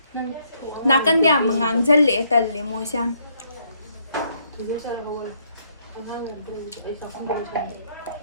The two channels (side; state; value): both; inverted; correlation -0.71